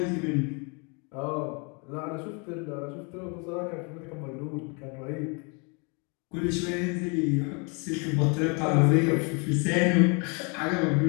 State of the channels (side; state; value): right; quieter; 33.7 dB